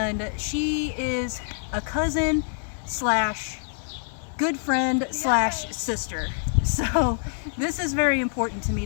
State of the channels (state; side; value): silent; right; 61 dB below the other